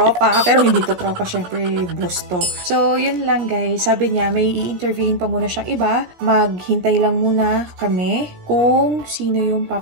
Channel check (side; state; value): left; late; 16 ms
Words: Pero hindi to tropa, syempre boss to. So, yun lang guys. Sabi niya, may i-interviewin pa muna siyang iba. Maghintay lang muna kami kung sino yung